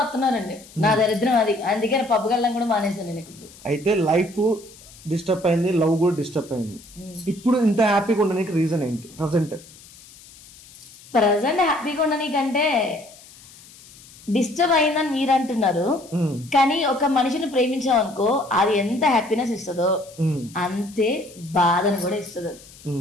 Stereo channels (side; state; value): left; noise; hiss, 22 dB below the sound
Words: నా దరిద్రం అది, అందుకే పబ్కి వెళ్ళడం కూడా మానేసాను నేను. ఇప్పుడు అయితే లైఫ్ డిస్టర్బ్ అయింది, లవ్ కూడా డిస్టర్బ్ అయింది. ఇప్పుడు ఇంత హ్యాపీగా ఉండడానికి రీజన్ ఏంటి? ప్రజెంట్ హ్యాపీగా ఉండడానికంటే డిస్టర్బ్ అయిందని మీరు అంటున్నారు, కానీ ఒక మనిషిని ప్రేమించామనుకో అది ఎంత హ్యాపీనెస్ ఇస్తుందో అంతే బాధను కూడా ఇస్తుంది.